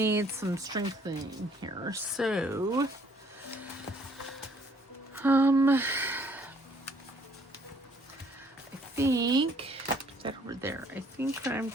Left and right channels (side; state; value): both; normal; correlation 0.62